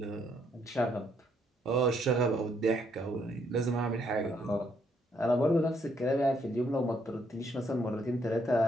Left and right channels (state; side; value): normal; both; correlation 0.72